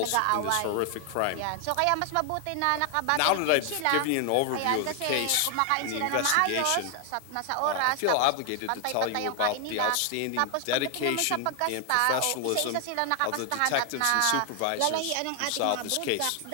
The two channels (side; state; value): both; different; correlation 0.00